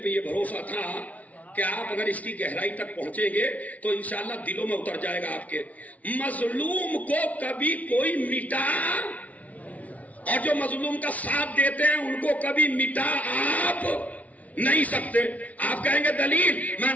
پہ یہ بھروسہ تھا کہ آپ اگر اس کی گہرائی تک پہنچیں گے تو انشاءاللہ دلوں میں اتر جائے گا آپ کے. مظلوم کو کبھی کوئی مٹا اور جو مظلوم کا ساتھ دیتے ہیں ان کو کبھی مٹا آپ نہیں سکتے. آپ کہیں گے دلیل، میں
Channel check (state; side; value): late; right; 0.070 ms